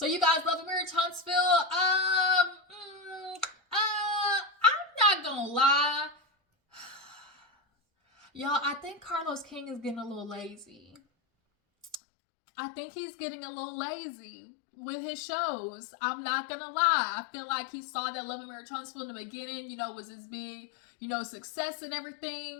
you guys, love and Marriage Huntsville. I'm not gonna lie, y'all. I think Carlos King is getting a little lazy. I think he's getting a little lazy with his shows. I'm not gonna lie. I feel like he saw that Love and Marriage Huntsville in the beginning, was his big, success and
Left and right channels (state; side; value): drops out; right; at 12.0 s